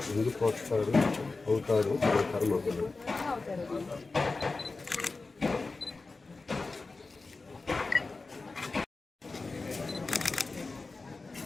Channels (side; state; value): right; quieter; 3.8 dB